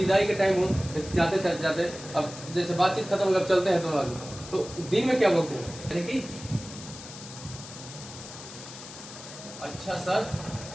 के टाइम हो, जाते जाते अब जैसे बातचीत खत्म अगर चलते हैं दोनों आदमी, तो दिन में क्या बोलते हैं? यानी कि अच्छा सर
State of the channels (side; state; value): left; noise; hiss, 14 dB below the sound